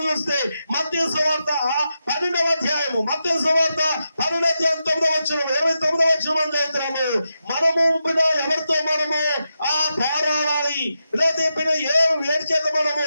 చూస్తే మత్తయి సువార్త 12వ అధ్యాయము, మత్తయి సువార్త 12వ అధ్యాయం 9వ వచనం, 29వ వచనం మనం చదువుతున్నాము. మనము ఎవరితో మనము పోరాడాలి, లేదా ఏడు చేత మనము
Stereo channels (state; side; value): inverted; both; correlation -0.87